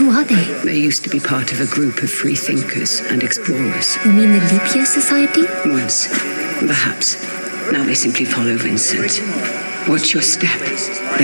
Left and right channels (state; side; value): inverted; both; correlation -1.00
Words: are they? They used to be part of a group of free thinkers and explorers. You mean the Leap Year Society? Once, perhaps. Now they simply follow Vincent. Watch your step.